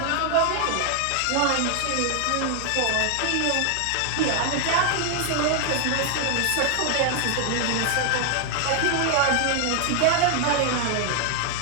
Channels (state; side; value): different; both; correlation 0.00